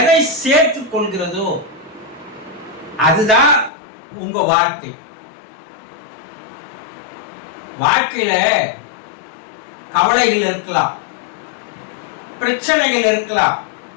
சேர்த்துக் கொள்கிறதோ அதுதான் உங்க வாழ்க்கை. வாழ்க்கையில கவலைகள் இருக்கலாம், பிரச்சனைகள் இருக்கலாம்,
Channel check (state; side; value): drops out; right; at 3.7 s